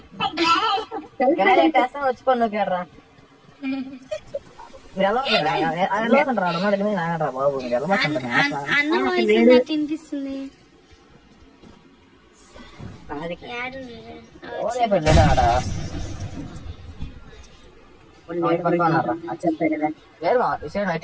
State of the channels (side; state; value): both; identical; correlation 1.00